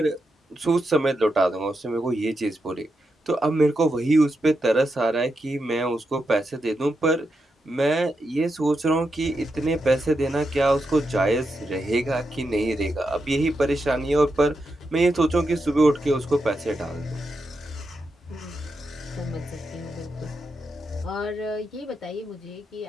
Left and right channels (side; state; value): both; normal; correlation 0.85